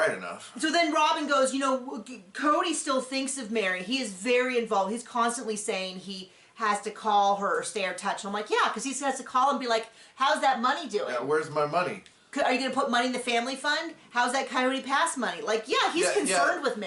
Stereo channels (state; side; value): identical; both; correlation 1.00